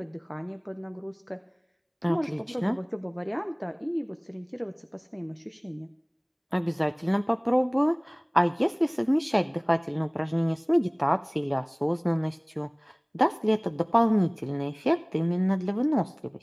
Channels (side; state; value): both; identical; correlation 1.00